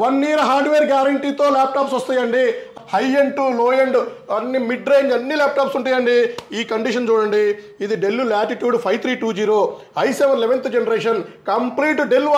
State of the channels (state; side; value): identical; both; correlation 1.00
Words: 1 ఇయర్ హార్డ్వేర్ గ్యారంటీతో ల్యాప్టాప్స్ వస్తాయండి. High end to low end అన్ని మిడ్ రేంజ్ అన్ని ల్యాప్టాప్స్ ఉంటాయండి. ఈ కండిషన్ చూడండి, ఇది Dell Latitude 5320 i7 11th generation complete Dell